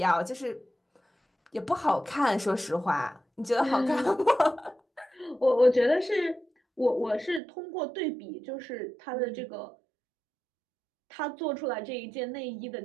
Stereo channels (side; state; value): left; drops out; at 7.4 s